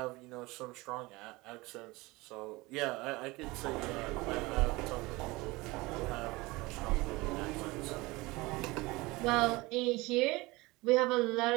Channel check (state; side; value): quieter; left; 22.2 dB